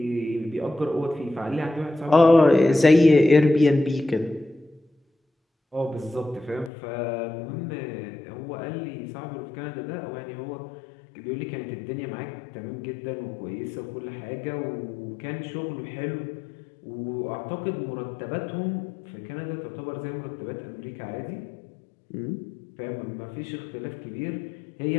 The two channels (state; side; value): drops out; right; at 6.7 s